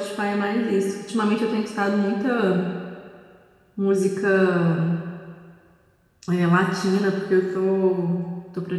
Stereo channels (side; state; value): both; identical; correlation 1.00